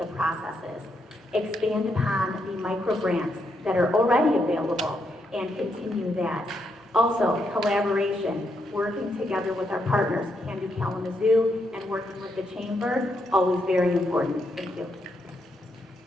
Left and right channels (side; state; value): both; normal; correlation 0.79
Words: processes. Expand upon the micro grants that are already available and continue that. Also, collaboration, working together with our partners, Can Do Kalamazoo, and working with the Chamber, always very important. Thank you.